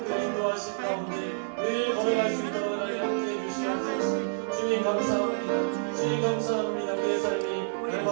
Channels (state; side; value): silent; left; digital silence